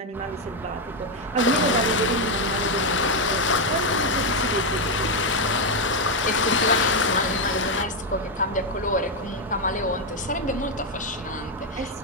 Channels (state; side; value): normal; both; correlation 0.04